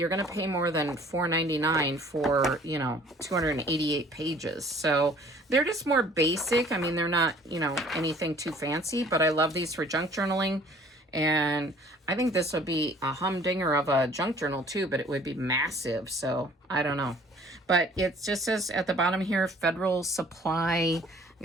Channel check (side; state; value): both; normal; correlation 0.54